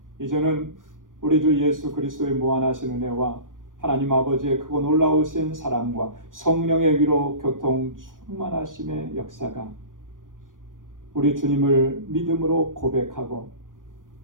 이제는 우리 주 예수 그리스도의 무한하신 은혜와 하나님 아버지의 크고 놀라우신 사랑과 성령의 위로 교통 충만하심의 역사가 우리 주님을 믿음으로 고백하고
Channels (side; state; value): left; late; 0.89 ms